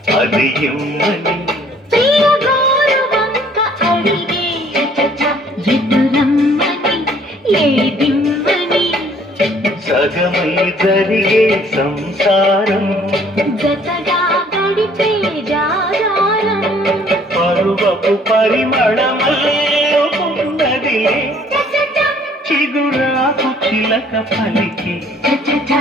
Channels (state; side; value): normal; both; correlation 0.59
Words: అది ఇమ్మని సగమై జరిగే సంసారం జతగా గడిపే జాగారం పరువపు పరిమళమల్లే చిగురాకు చిలక పలికి